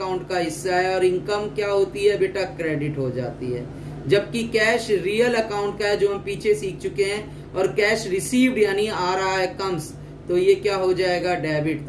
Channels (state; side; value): identical; both; correlation 1.00